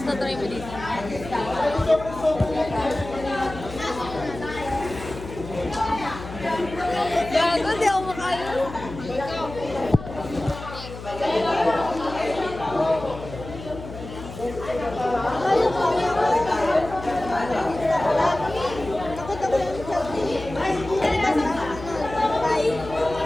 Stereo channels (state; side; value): noise; left; hum, 12 dB below the sound